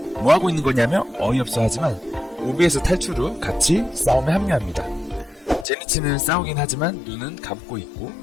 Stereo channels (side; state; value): right; drops out; at 5.7 s